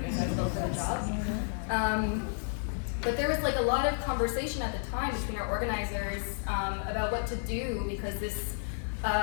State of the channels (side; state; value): right; silent; 57 dB below the other